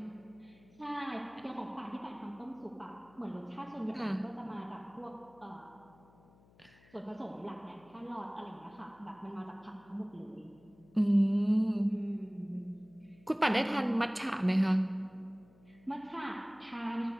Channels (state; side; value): noise; left; hum, 27 dB below the sound